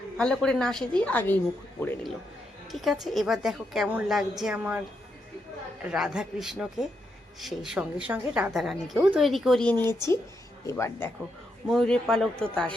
ভালো করে না সেজেই আগেই মুকুট পরে নিল। ঠিক আছে, এবার দেখো কেমন লাগছে আমার রাধা কৃষ্ণকে। সেই সঙ্গে সঙ্গে রাধা রানীকেও তৈরি করিয়ে নিয়েছি। এবার দেখো, ময়ূরের পালক তো তার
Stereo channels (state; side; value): normal; both; correlation 0.81